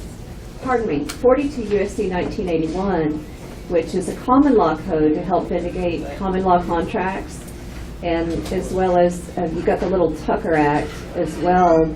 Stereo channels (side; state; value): both; identical; correlation 1.00